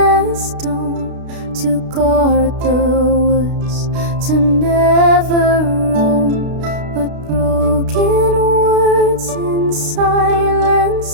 dome to guard the woods, to never roam, but broken words in silence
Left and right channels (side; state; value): left; late; 32 ms